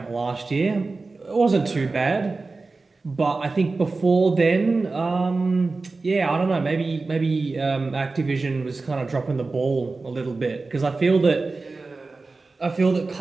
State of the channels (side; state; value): left; quieter; 3.7 dB